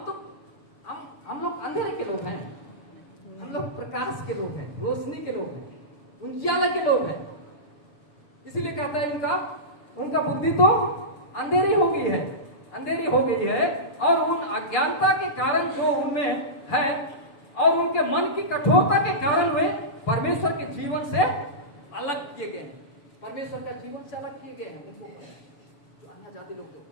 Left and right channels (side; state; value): right; late; 7.0 ms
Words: हम लोग अंधेरे के लोग हैं, हम लोग प्रकाश के लोग हैं, रोशनी के लोग हैं, उजियाले के लोग हैं। इसीलिए कहता है उनका बुद्धि तो अंधेरी हो गई है, और उन अज्ञानता के कारण जो उनमें है और उनके मन की कठोरता के कारण वे परमेश्वर के जीवन से अलग किए गए हैं। परमेश्वर का जीवन से अलग किए गए हैं उनको, जो अन्य जाति लोग